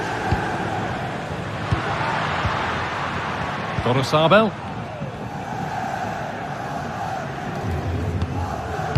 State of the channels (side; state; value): both; identical; correlation 1.00